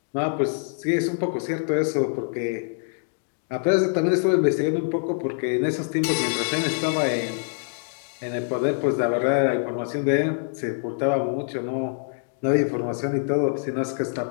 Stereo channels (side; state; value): right; silent; digital silence